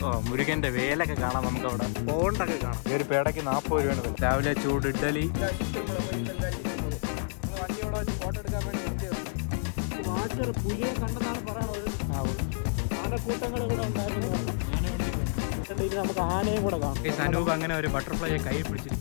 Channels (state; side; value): silent; right; 58 dB below the other